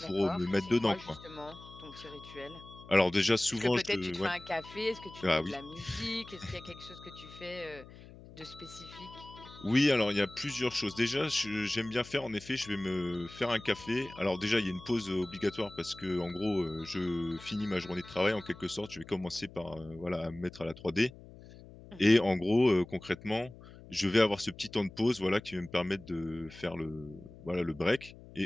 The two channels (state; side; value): noise; left; hum, 18 dB below the sound